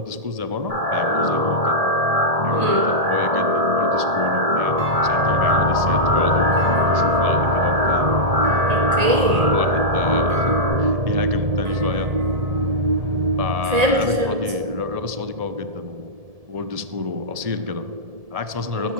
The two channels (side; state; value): left; late; 1.7 ms